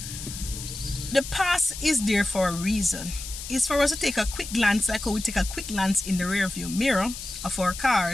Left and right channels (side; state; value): left; noise; hiss, 10 dB below the sound